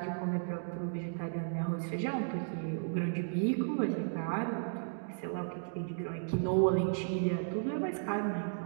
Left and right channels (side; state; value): left; silent; digital silence